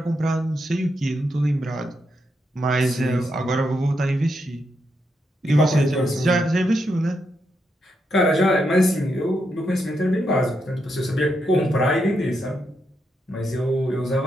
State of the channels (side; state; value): both; normal; correlation 0.82